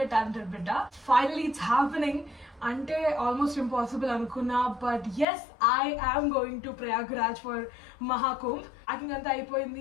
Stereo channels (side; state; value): right; drops out; at 5.2 s